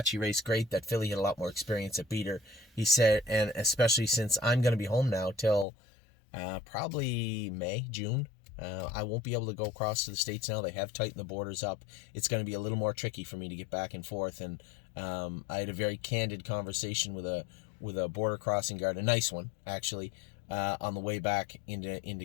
she raced great. That filly had a lot more experience at beat her. He said, and especially since I'm going to be home now till probably May, June. I won't be able to go across to the States now. They have tightened the borders up. It's going to be a little more tricky for me to get back and forth. And I had a very candid conversation with a border crossing guard, a nice one actually, on the way back into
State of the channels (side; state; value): right; drops out; at 5.7 s